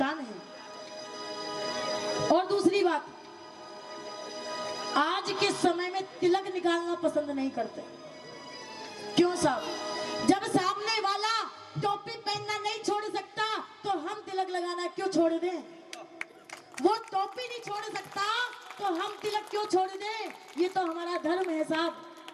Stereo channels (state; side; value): identical; both; correlation 1.00